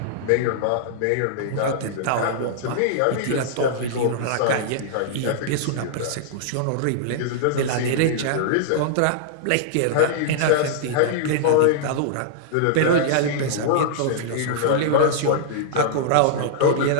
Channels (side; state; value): both; different; correlation -0.02